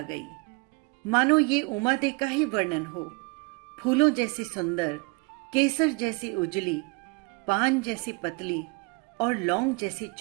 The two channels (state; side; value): quieter; left; 30.2 dB